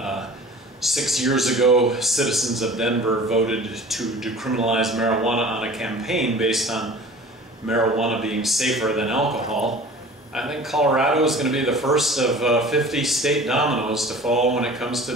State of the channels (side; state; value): both; normal; correlation 0.42